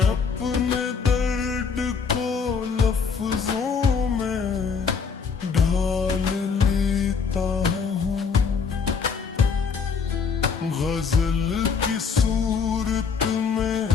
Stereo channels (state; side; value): quieter; right; 5.7 dB